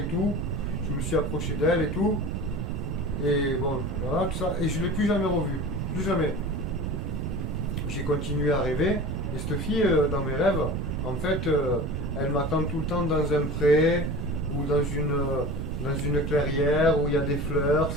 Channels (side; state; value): right; noise; rumble, 2 dB below the sound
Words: tout. Je me suis approché d'elle et tout. Et bon, voilà, tout ça. Et je ne l'ai plus jamais revue. Plus jamais. J'ai continué à rêver. Et cette fille, dans mes rêves, en fait, elle m'attend tout le temps dans un pré ou dans une clairière où il y a des fleurs,